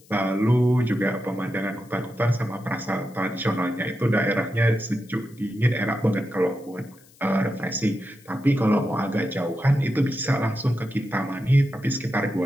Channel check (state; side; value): noise; left; hiss, 27 dB below the sound